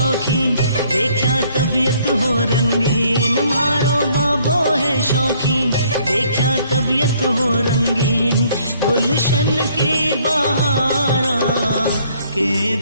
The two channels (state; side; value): inverted; both; correlation -0.63